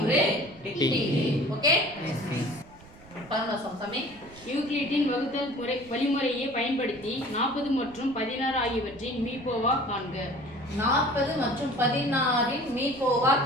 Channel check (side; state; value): right; noise; rumble, 22 dB below the sound